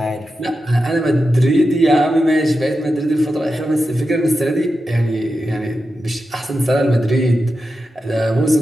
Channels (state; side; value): normal; both; correlation 0.90